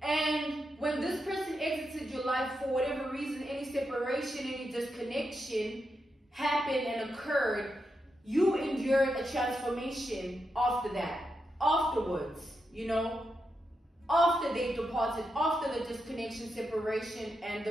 And when this person exited your life for whatever reason, any separation, any disconnection happened and occurred, you endured a transformation after that, afterwards, you know, after they departed, after the disconnection, separation, and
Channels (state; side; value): normal; both; correlation 0.85